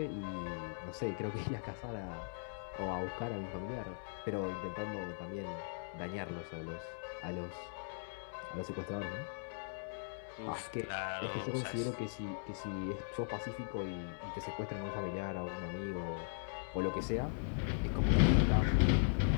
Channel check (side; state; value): right; silent; digital silence